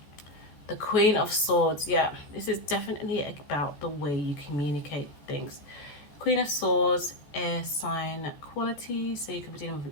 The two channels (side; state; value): right; late; 14 ms